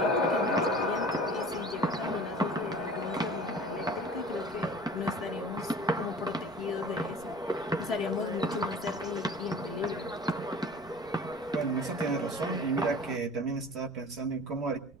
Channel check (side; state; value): right; noise; rumble, 22 dB below the sound